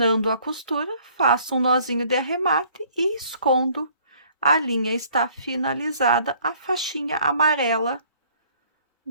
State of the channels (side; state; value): both; inverted; correlation -0.59